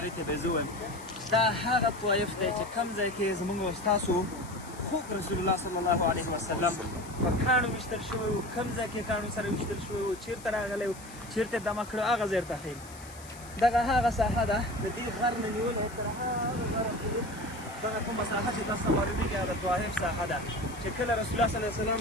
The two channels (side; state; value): left; noise; hiss, 18 dB below the sound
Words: ته به یې زه وایم دا هغه طایف دی چې کوم ځای کې زموږ او ستاسو خوږ رسول الله صلی الله علیه وسلم په کاڼو ویشتل شوی و. کوم ځای کې کاڼو سره ویشتل شوی و، چېرته راغلی و، چېرته یې دمه کړو، هغه ځای ته ښیم. دغه هغه ساحه ده د دې غر نه نیول او تر هغه غره پورې دغه کومه ساحه چې تاسو ته معلومېږي هغه د طایف ساحه ده چې کله رسول الله صلی الله علیه وسلم